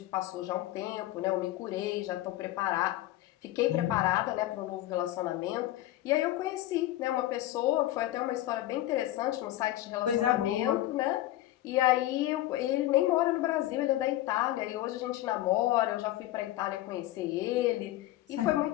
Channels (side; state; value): right; quieter; 15.0 dB